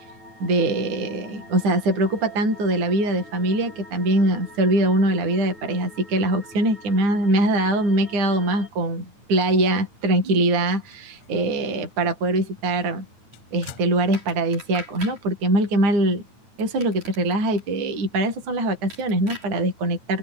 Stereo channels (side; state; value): left; late; 9.2 ms